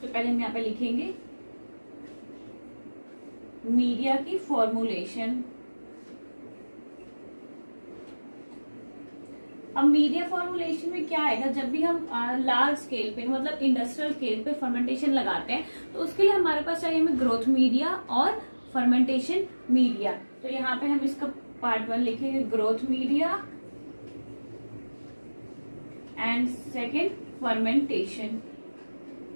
पहले हम यहाँ पे लिखेंगे मीडिया की फॉर्मुलेशन। अब मीडिया फॉर्मुलेशन में क्या आएगा, जब भी हम लार्ज स्केल पे मतलब इंडस्ट्रियल स्केल पे फर्मेंटेशन लगाते हैं तो उसके लिए हमारे पास चाहिए हमें ग्रोथ मीडिया और फर्मेंटेशन मीडिया। तो यहाँ पे हम इसका पार्ट 1 लिखेंगे growth media and second fermentation.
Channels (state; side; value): inverted; both; correlation -1.00